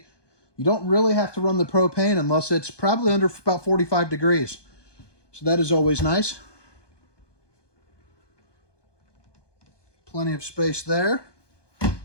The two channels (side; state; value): right; late; 1.2 ms